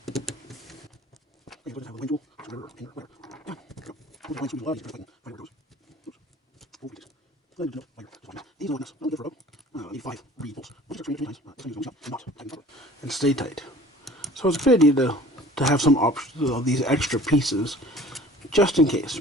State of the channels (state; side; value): normal; both; correlation 0.48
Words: And stay tight. So it's a good idea to have some options of these extra pieces just in case,